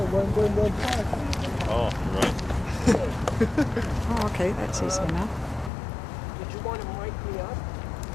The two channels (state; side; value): drops out; right; at 5.7 s